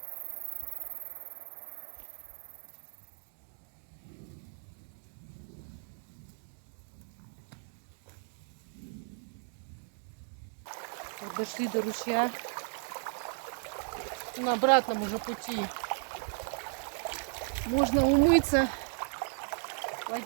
Вот дошли до ручья. На обратном уже пути. Можно умыться,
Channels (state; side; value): silent; left; 54 dB below the other